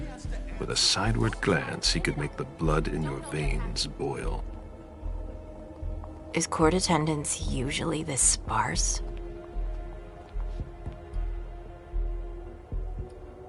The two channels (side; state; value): both; identical; correlation 1.00